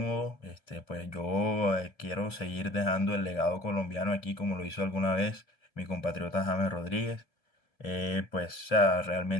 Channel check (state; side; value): late; right; 1.7 ms